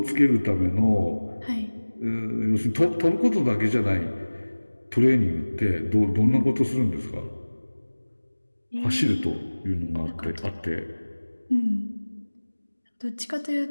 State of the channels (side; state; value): both; inverted; correlation -1.00